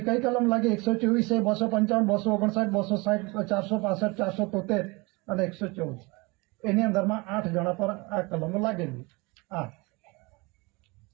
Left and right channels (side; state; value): left; quieter; 26.0 dB